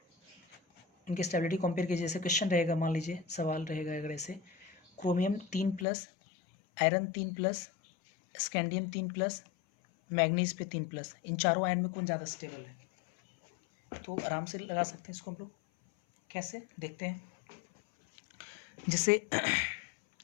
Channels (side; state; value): right; drops out; at 5.9 s